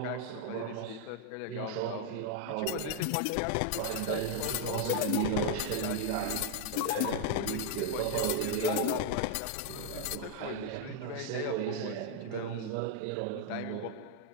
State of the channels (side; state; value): both; different; correlation 0.00